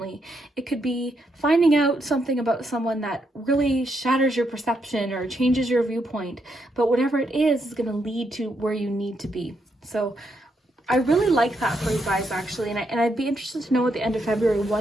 It could be finding out something about someone that really shatters your perception or changes your viewpoint. But whatever it is going to lead to where you need to be. So I really like that for you guys, actually. And I'd be interested to know at the end of February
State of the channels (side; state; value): both; normal; correlation 0.79